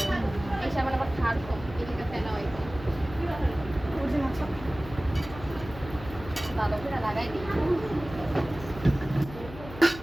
এই সাবান আবার খার কম এদিকে ফেলা হয় অরিজিনাল সাবান ভালো করে লাগাই দিই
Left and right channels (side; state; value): left; noise; hum, 14 dB below the sound